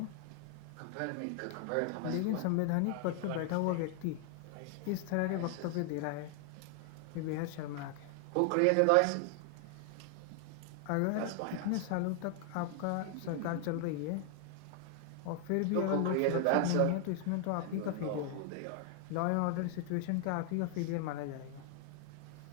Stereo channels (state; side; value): different; both; correlation 0.00